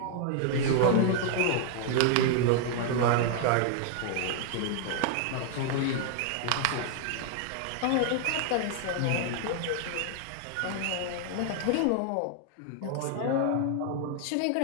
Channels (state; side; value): different; both; correlation 0.00